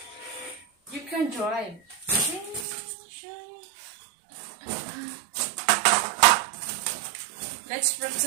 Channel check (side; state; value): left; drops out; at 2.7 s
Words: You can drive. Let's